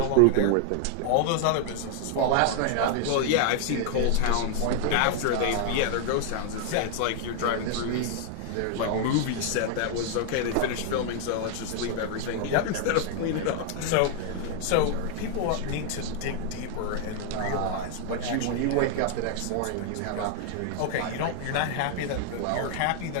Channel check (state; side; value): different; both; correlation 0.00